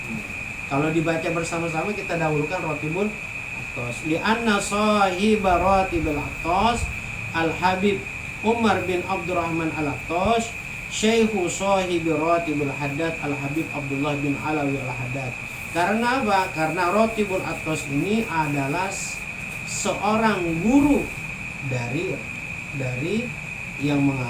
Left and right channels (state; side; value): identical; both; correlation 1.00